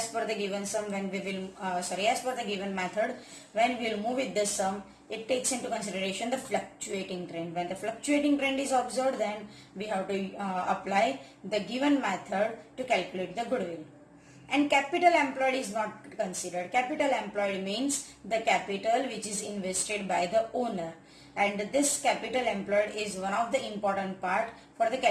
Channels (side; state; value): both; identical; correlation 1.00